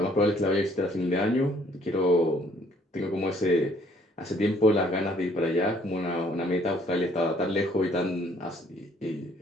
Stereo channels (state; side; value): normal; both; correlation 0.63